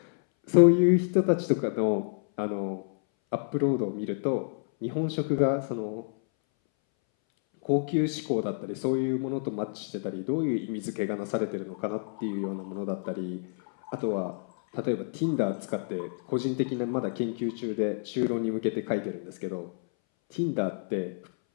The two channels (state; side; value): silent; right; 59 dB below the other